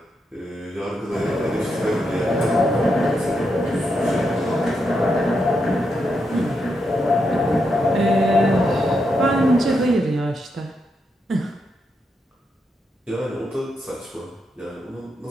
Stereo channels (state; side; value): normal; both; correlation 0.83